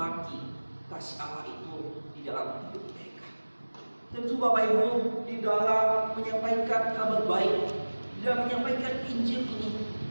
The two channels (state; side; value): inverted; both; correlation -1.00